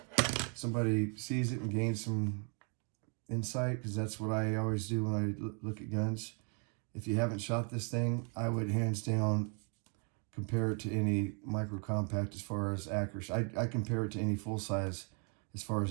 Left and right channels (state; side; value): quieter; left; 38.8 dB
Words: somebody sees it and gains some insight, because that's what I always do when I look at guns. If you haven't shot this thing, I would hands down compare it to any micro compact as far as accuracy. I compare it to any full size as far